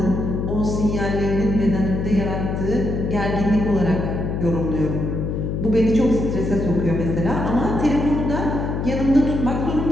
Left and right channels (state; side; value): noise; left; hum, 2 dB below the sound